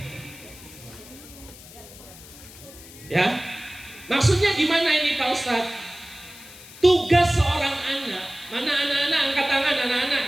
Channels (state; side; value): noise; left; hiss, 18 dB below the sound